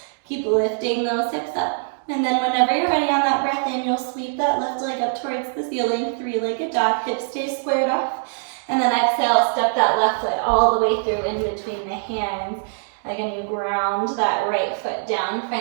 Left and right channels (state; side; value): silent; left; digital silence